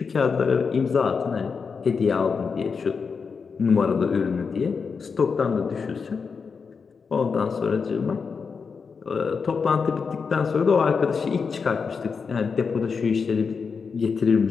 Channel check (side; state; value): right; quieter; 5.4 dB